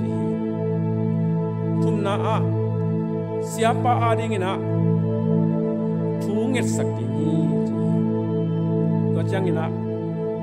thumna a siapa adingina thunget sakini ji to changina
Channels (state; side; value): identical; both; correlation 1.00